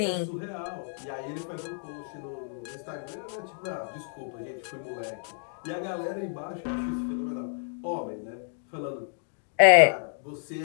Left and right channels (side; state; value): right; silent; digital silence